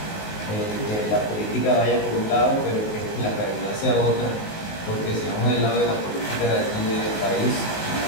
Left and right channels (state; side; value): late; right; 19 ms